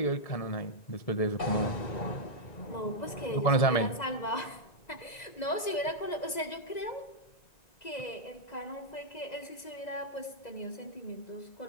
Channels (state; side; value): late; right; 2.0 ms